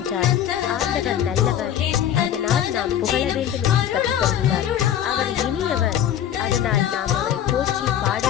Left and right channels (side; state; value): right; quieter; 10.3 dB